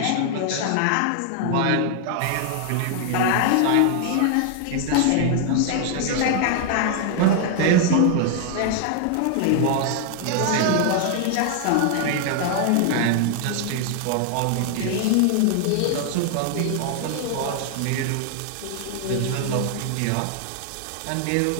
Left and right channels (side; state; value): both; different; correlation 0.00